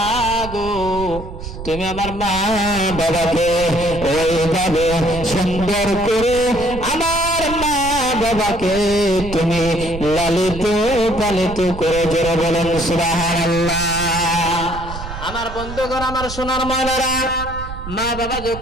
গো, তুমি আমার মা বাবাকে ওইভাবে সুন্দর করে আমার মা বাবাকে তুমি লালিত পালিত করে জোরে বলেন সুবহানাল্লাহ। আমার বন্ধুগণ, আমার সোনার ময়নারা, মা বাবা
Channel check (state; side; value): noise; right; rumble, 10 dB below the sound